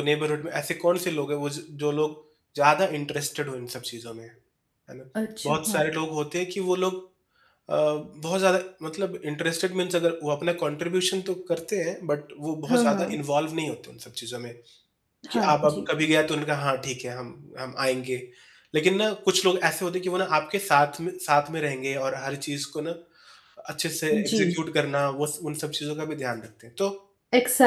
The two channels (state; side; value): identical; both; correlation 1.00